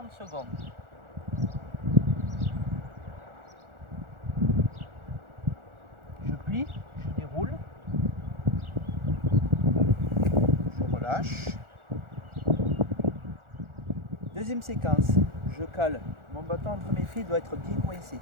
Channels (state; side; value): late; left; 1.4 ms